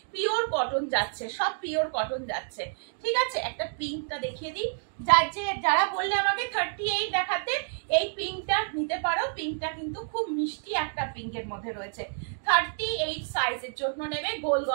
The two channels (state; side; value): silent; left; 59 dB below the other